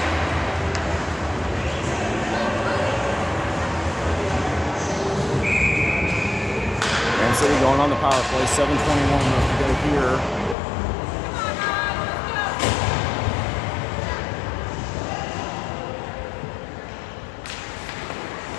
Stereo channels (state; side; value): drops out; right; at 10.6 s